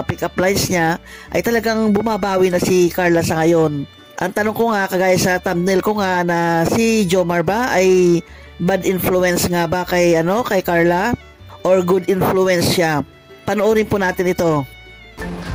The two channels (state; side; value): identical; both; correlation 1.00